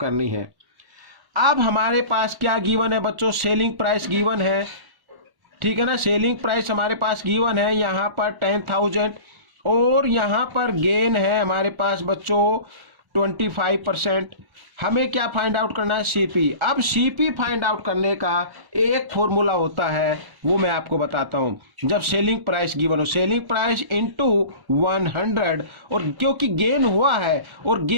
है। अब हमारे पास क्या गिवन है बच्चों, सेलिंग प्राइस गिवन है, ठीक है ना, सेलिंग प्राइस हमारे पास गिवन है यहाँ पर 10,000, और यहाँ पर गेन है हमारे पास बच्चों 25%। हमें क्या फाइंड आउट करना है, सीपी। अब सीपी फाइंड आउट करने का एक फॉर्मूला होता है, वो मैं आपको बताता हूं। जब सेलिंग प्राइस गिवन हो, सेलिंग प्राइस इंटू 100, और क्योंकि गेन हुआ है और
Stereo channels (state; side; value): late; left; 1.1 ms